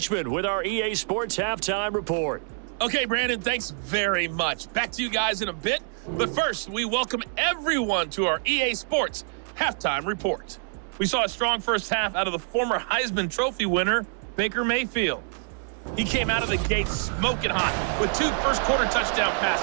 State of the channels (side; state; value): left; silent; 58 dB below the other